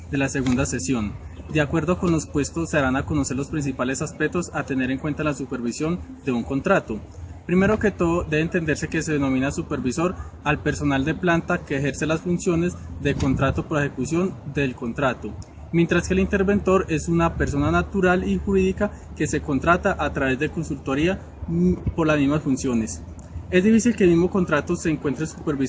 de la segunda sesión. De acuerdo con los puestos, se darán a conocer los principales aspectos a tener en cuenta en la supervisión de un contrato. Primero que todo, debe entenderse que se denomina supervisor al personal de planta que ejerce las funciones de contrato por ejecución del contrato, mientras que el interventor es una persona natural y jurídica que se contrata a través de consultoría por las mismas funciones. Es difícil que el mismo contrato se encuentre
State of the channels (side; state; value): both; identical; correlation 1.00